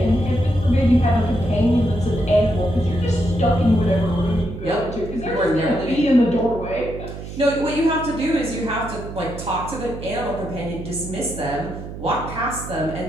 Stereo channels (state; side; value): noise; right; hum, 10 dB below the sound